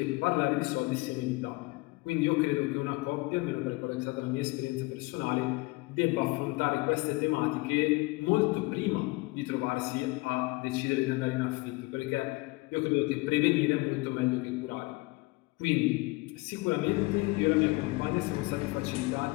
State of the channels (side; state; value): right; quieter; 23.9 dB